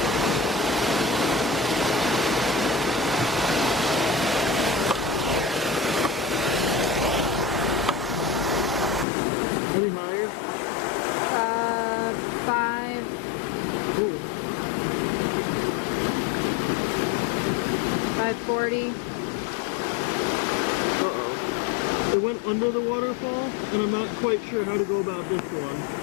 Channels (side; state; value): right; drops out; at 9.1 s